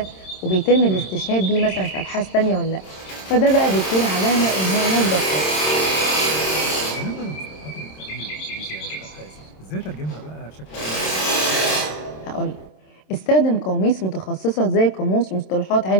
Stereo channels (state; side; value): late; right; 27 ms